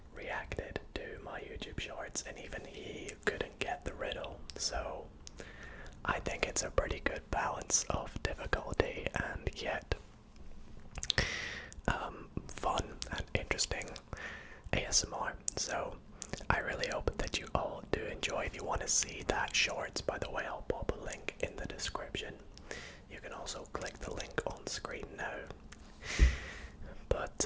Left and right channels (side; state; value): both; identical; correlation 1.00